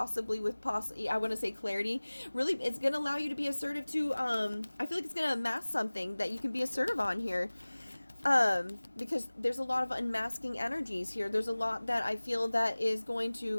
with I want to say clarity, really it's going to allow you to be assertive to, I feel like it's going to amass something that you can be assertive on here. Because there's a lot of unmasking energies here. There's a lot that I feel that is going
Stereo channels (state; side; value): inverted; both; correlation -1.00